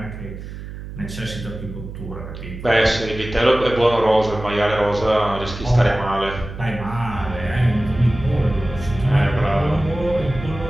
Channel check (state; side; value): noise; right; hum, 11 dB below the sound